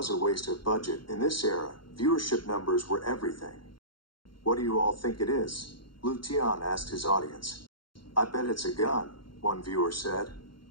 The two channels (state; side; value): late; right; 0.73 ms